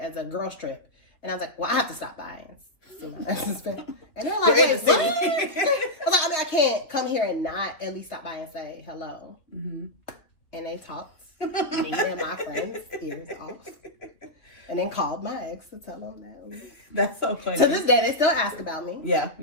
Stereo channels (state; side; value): late; right; 2.9 ms